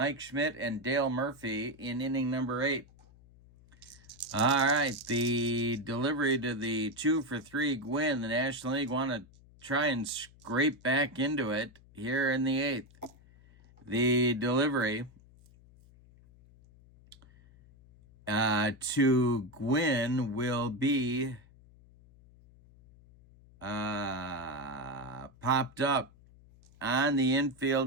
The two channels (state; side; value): noise; left; hum, 25 dB below the sound